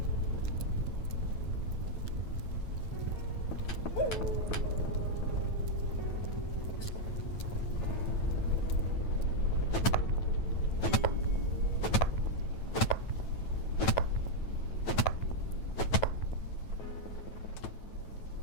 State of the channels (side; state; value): right; late; 9.1 ms